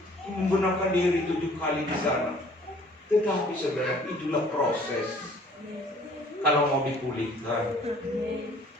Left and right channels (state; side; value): normal; both; correlation 0.55